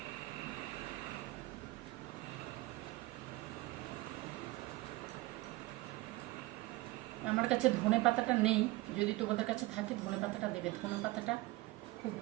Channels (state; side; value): quieter; left; 20.1 dB